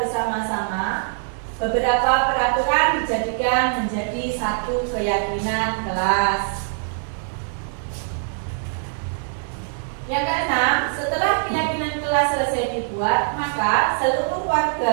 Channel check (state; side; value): silent; left; digital silence